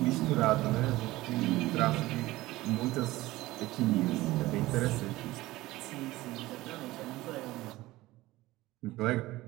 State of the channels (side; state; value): left; quieter; 18.1 dB